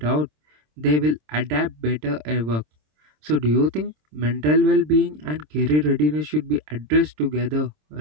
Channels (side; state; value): left; late; 26 ms